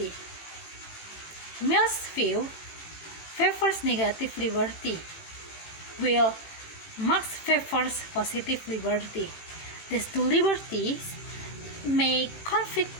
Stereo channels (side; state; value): right; late; 18 ms